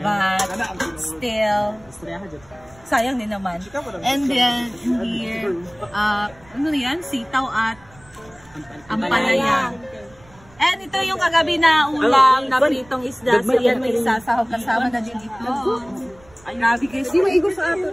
still, sayang din naman. And then here, ano yan, sitaw at ampalaya. And ito yung kagabi na ulam na pritong isda, so yan may isasahog kasama na din ito. Ay, grabe guys. Hindi maigo sa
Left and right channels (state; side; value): noise; right; rumble, 26 dB below the sound